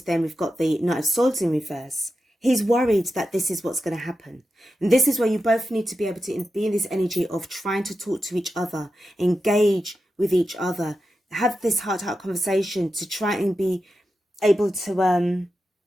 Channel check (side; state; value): both; normal; correlation 0.90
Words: we've got the Knight of Swords in reverse. He's worried that this is what's going to happen. And this is where you both need to be able to be in this energy of trying to talk to each other, engage with each other, have this heart-to-heart conversation to try and be able to,